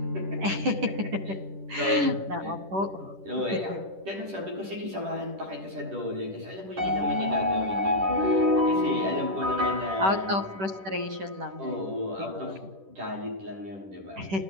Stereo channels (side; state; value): left; late; 10 ms